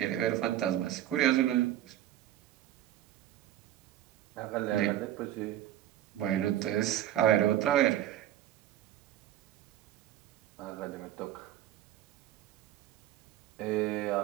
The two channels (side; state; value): left; quieter; 12.5 dB